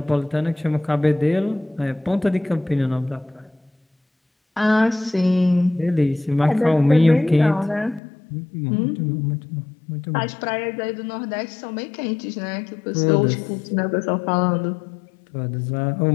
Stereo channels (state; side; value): drops out; right; at 8.0 s